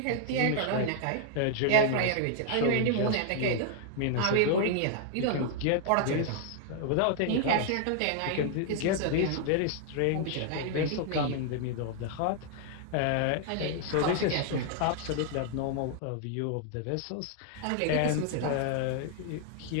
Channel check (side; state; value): both; different; correlation 0.00